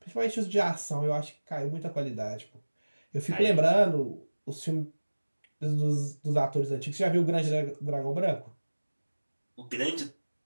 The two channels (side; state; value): both; inverted; correlation -1.00